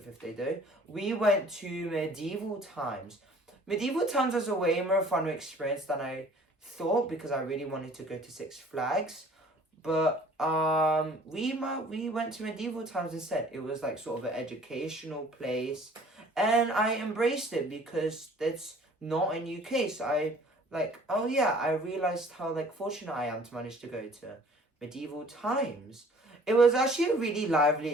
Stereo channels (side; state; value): both; normal; correlation 0.52